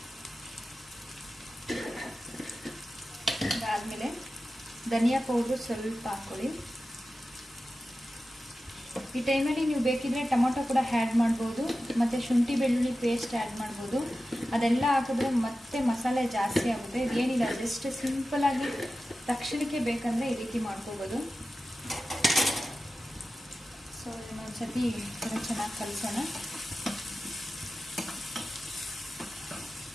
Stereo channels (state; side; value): normal; both; correlation 0.94